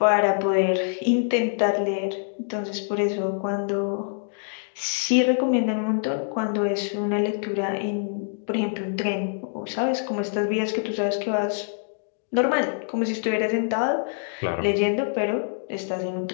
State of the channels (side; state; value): right; silent; digital silence